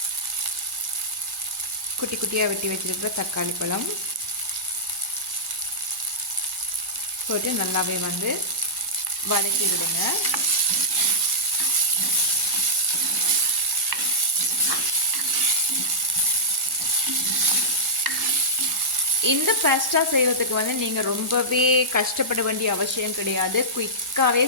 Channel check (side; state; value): both; normal; correlation -0.13